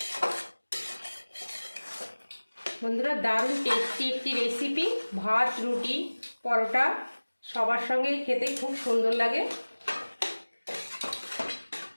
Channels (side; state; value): both; inverted; correlation -1.00